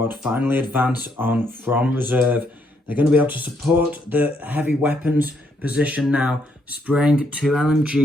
finally advance on from reserve. They're going to be able to support the heavy weapons position now, spraying 2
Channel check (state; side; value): normal; both; correlation 0.74